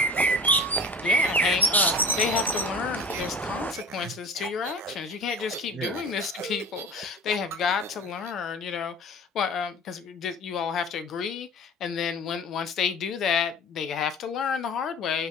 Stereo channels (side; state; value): both; normal; correlation 0.38